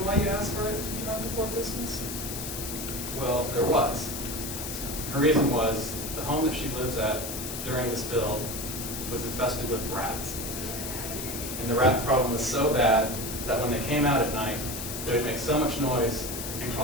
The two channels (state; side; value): noise; left; hiss, 6 dB below the sound